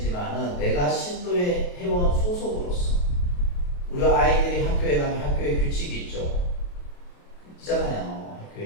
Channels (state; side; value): late; right; 28 ms